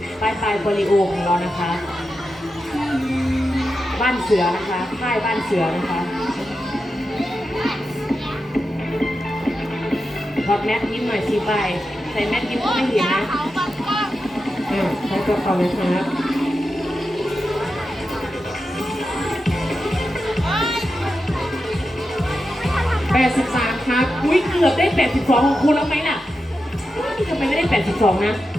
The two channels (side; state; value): both; normal; correlation 0.89